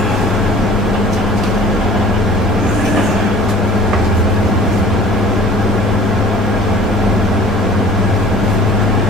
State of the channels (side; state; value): both; normal; correlation 0.49